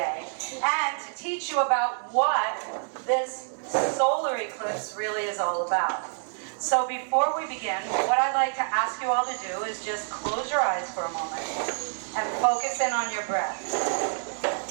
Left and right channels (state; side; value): silent; left; 60 dB below the other